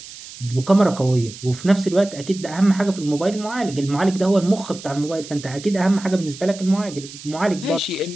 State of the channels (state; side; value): noise; right; hiss, 15 dB below the sound